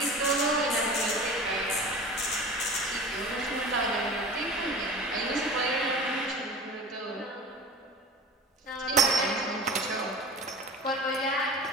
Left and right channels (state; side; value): normal; both; correlation 0.36